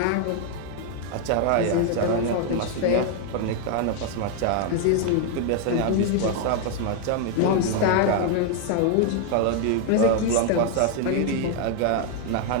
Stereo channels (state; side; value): different; both; correlation 0.00